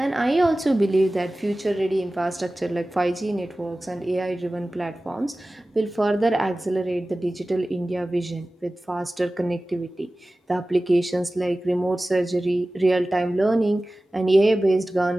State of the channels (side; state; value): both; normal; correlation 0.97